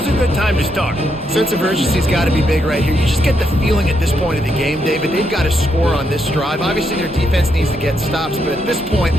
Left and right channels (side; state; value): both; normal; correlation 0.79